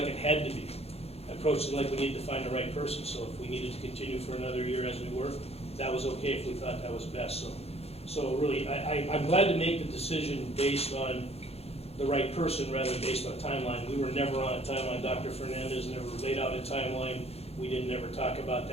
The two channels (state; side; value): late; right; 0.29 ms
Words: it had to be. I approached it like we needed to find the right person, so if we needed to continue for another year as we were, that was okay if we thought that was best. So really, I'm glad to make the decision based on the right person rather than based on timeline. We were never on a timeline. Dr. Fernandez never laid out a timeline. We didn't ever talk about